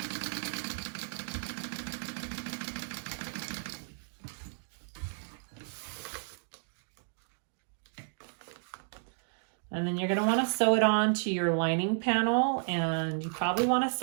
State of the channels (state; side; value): silent; left; digital silence